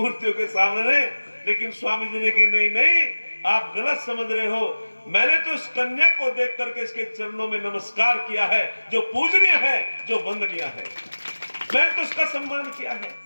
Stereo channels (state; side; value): inverted; both; correlation -1.00